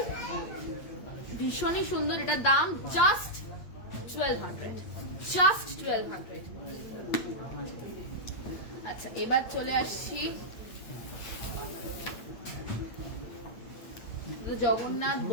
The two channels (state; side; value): late; right; 8.5 ms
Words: ভীষণই সুন্দর। এটার দাম জাস্ট 1,200, জাস্ট 1,200। আচ্ছা এবার চলে আসছি জগন্নাথ